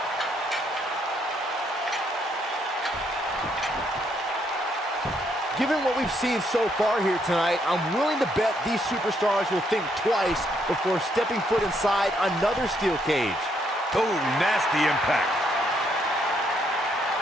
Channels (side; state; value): both; normal; correlation 0.73